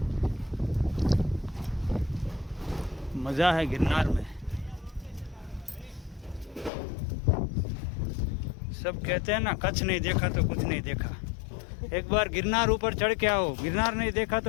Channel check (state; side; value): drops out; right; at 6.7 s